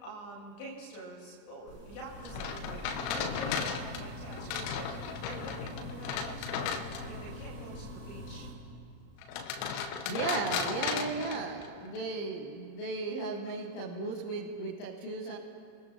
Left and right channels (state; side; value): late; right; 35 ms